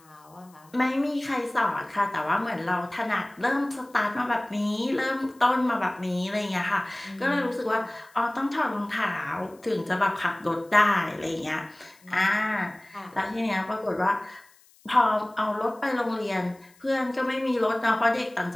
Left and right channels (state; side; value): noise; left; hiss, 29 dB below the sound